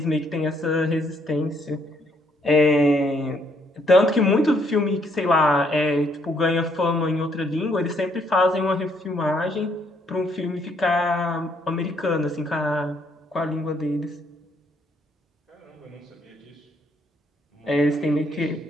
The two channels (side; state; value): both; normal; correlation 0.70